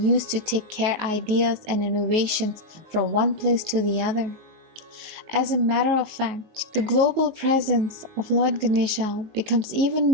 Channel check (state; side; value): late; left; 19 ms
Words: to take care ideas and innovations from one place to the other. As a matter of fact, the global presence of Lord Ganesha becomes even